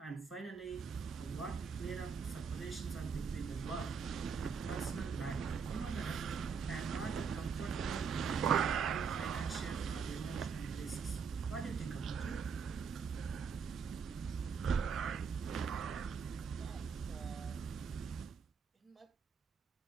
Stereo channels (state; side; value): quieter; left; 6.0 dB